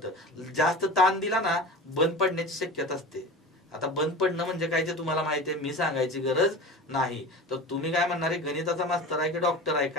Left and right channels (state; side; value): normal; both; correlation 0.33